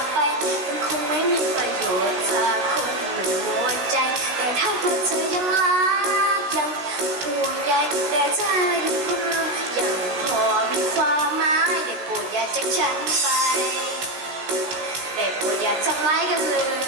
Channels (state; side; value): late; left; 16 ms